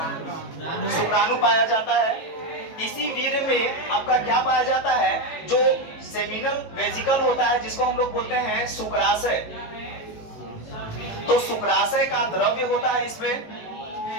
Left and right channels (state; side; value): late; right; 18 ms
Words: शुक्राणु पाया जाता है। इसी वीर्य में आपका क्या पाया जाता है? जो सेमिनल वेजिकल होता है जिसको हम लोग बोलते हैं शुक्राशय। तो शुक्राशय का द्रव्य होता है इसमें,